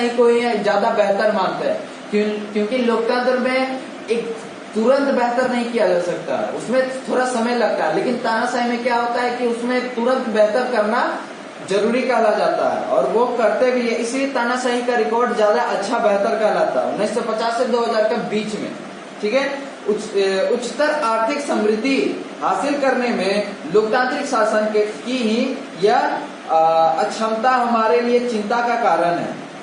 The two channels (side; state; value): both; identical; correlation 1.00